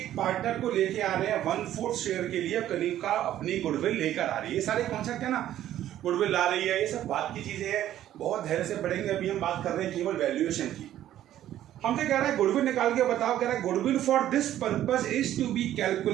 पार्टनर को लेके आ रहे हैं 1/4 शेयर के लिए। कनिका अपनी गुडविल लेकर आ रही है। ये सारे कॉन्सेप्ट है ना, गुडविल ला रही है, ये सब बात की चीजें हैं, बहुत धैर्य से पढ़ेंगे। अभी हम बात कर रहे हैं केवल वैल्यूएशन की। हमसे कह रहा है गुडविल निकाल के बताओ। कह रहा है goodwill for this purpose is to be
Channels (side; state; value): left; quieter; 12.3 dB